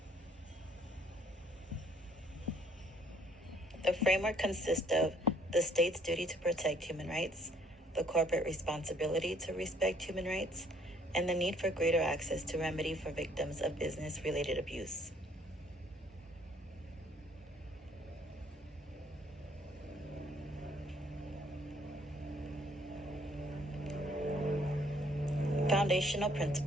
The framework consists of the state's duty to protect human rights, the corporate responsibility to respect human rights, and the need for greater access to remedy for victims of business-related abuse. Foundational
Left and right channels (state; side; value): normal; both; correlation 0.62